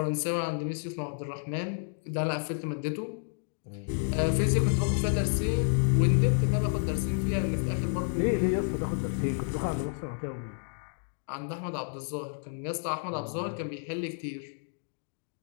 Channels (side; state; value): right; silent; digital silence